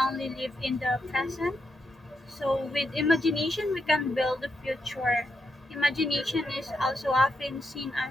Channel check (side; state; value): both; normal; correlation 0.82